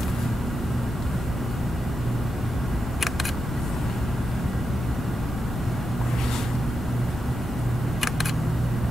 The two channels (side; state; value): both; normal; correlation 0.87